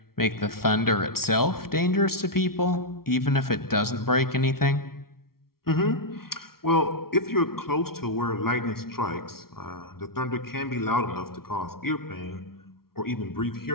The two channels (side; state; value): right; late; 0.94 ms